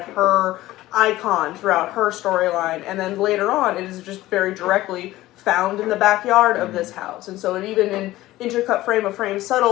her icon throughout her storyline. And then later on, it is just very directly found in the backyard of this house. And so it even in intercut frame of frame,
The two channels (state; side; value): quieter; right; 16.5 dB